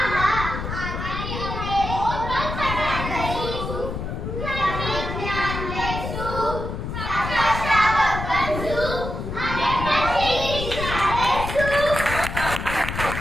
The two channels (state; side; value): noise; left; rumble, 5 dB below the sound